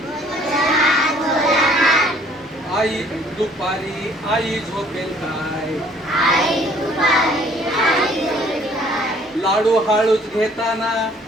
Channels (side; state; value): both; normal; correlation 0.59